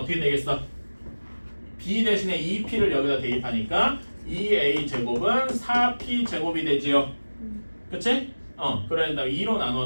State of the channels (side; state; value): both; inverted; correlation -1.00